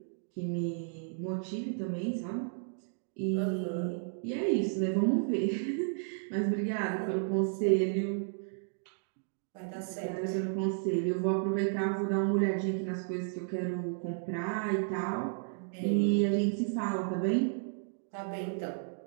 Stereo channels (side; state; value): left; silent; digital silence